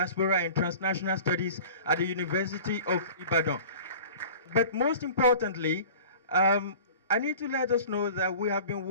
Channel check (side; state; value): both; inverted; correlation -0.42